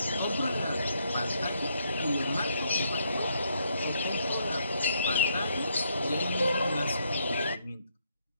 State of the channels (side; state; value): both; inverted; correlation -0.74